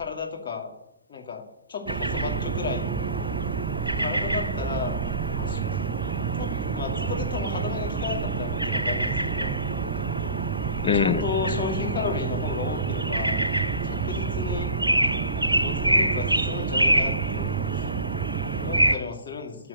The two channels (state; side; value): inverted; both; correlation -0.44